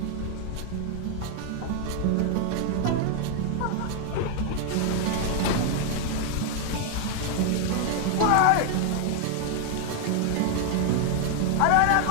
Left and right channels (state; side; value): different; both; correlation 0.00